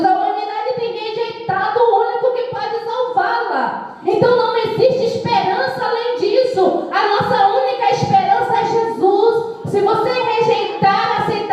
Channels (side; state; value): both; identical; correlation 1.00